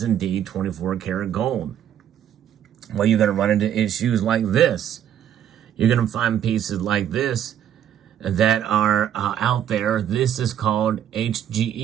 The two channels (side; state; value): left; quieter; 10.1 dB